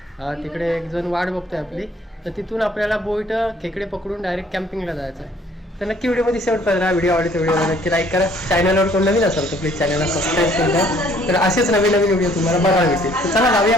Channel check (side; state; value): both; normal; correlation 0.60